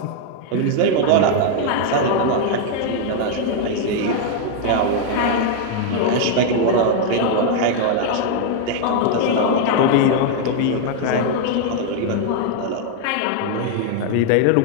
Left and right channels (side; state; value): both; different; correlation 0.00